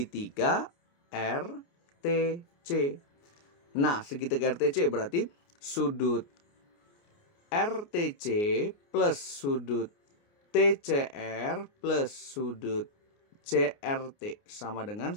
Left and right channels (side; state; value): right; late; 29 ms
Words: RTC. Nah, segitiga RTC berarti sudut RTC plus sudut TCR plus sudut CRT sama dengan